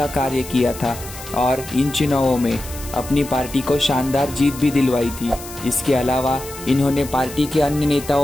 कार्य किया था और इन चुनावों में अपनी पार्टी को शानदार जीत भी दिलवाई थी। इसके अलावा इन्होंने पार्टी के अन्य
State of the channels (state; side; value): noise; left; hiss, 14 dB below the sound